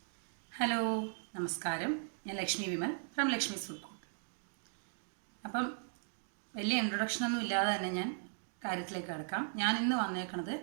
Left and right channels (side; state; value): left; silent; digital silence